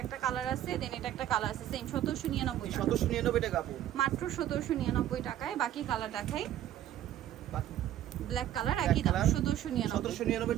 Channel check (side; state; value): left; quieter; 12.1 dB